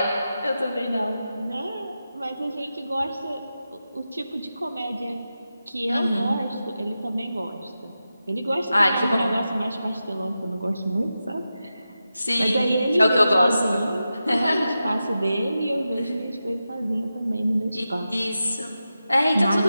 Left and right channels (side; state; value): both; inverted; correlation -0.91